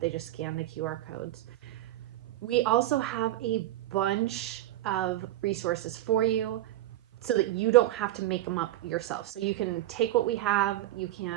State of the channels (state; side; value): quieter; left; 14.6 dB